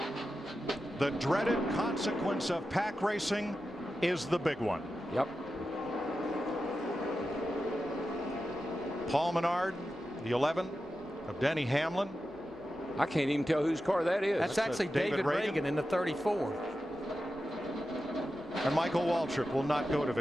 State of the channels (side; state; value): both; normal; correlation 0.91